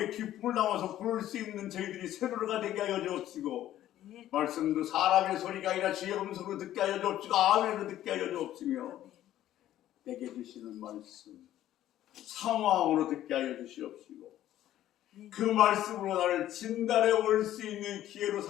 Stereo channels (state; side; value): quieter; right; 12.9 dB